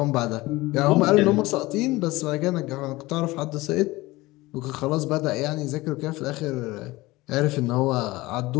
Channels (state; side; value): quieter; right; 20.2 dB